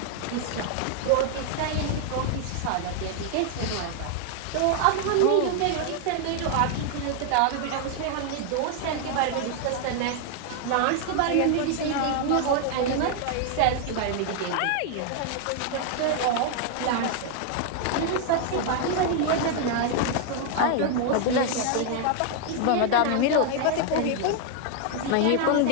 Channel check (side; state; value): both; different; correlation 0.00